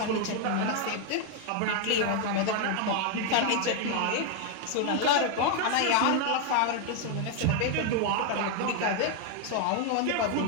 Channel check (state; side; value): different; both; correlation 0.00